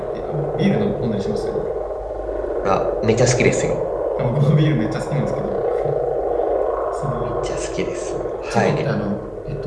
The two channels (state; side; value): identical; both; correlation 1.00